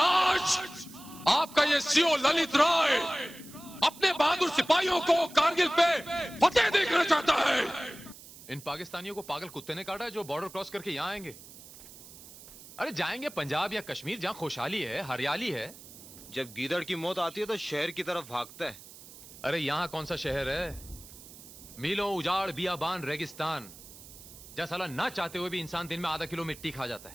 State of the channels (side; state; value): right; noise; hiss, 18 dB below the sound